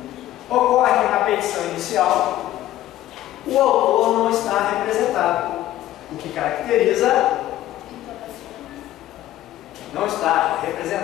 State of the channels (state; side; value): quieter; right; 14.0 dB